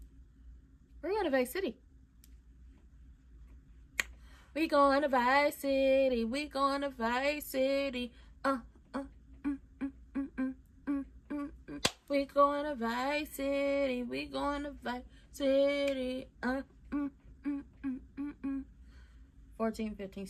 We're going to Vice City. We going to Vice City. We going to Vice City. We going to Vice City. We going to Vice City. 14, 15,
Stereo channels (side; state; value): both; identical; correlation 1.00